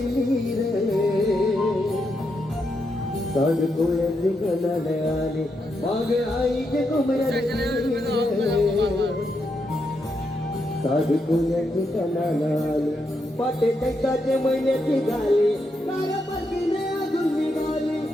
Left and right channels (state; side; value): normal; both; correlation 0.82